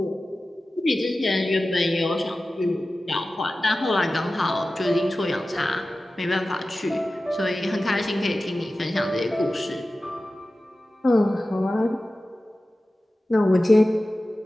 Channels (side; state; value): both; normal; correlation 0.95